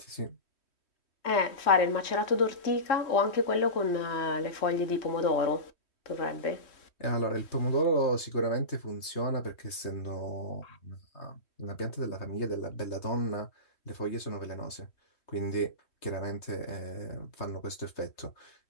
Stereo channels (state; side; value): late; right; 3.1 ms